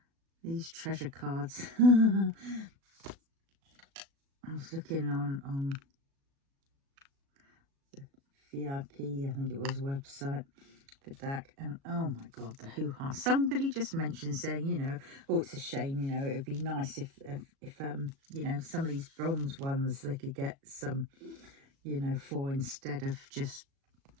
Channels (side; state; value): left; late; 36 ms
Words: these treasure cards. I was looking on the VIP, I think it was, website for DAC, and oh my god, the hoo-ha. Somebody just mentioned saying, you know, oh, it's a shame, you know, it would be nice if you know, some of these bronze ones they could get some, you know, for, instead of just,